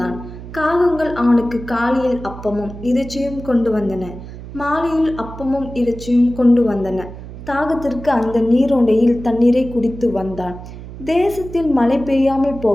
காகங்கள் அவனுக்கு காலையில் அப்பமும் இறைச்சியும் கொண்டு வந்தன, மாலையில் அப்பமும் இறைச்சியும் கொண்டு வந்தன. தாகத்திற்கு அந்த நீரோடையில் தண்ணீரை குடித்து வந்தான். தேசத்தில் மழை பெய்யாமல்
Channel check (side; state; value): right; noise; hum, 13 dB below the sound